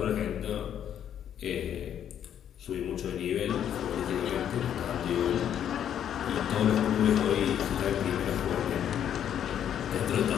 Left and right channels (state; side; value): quieter; right; 9.7 dB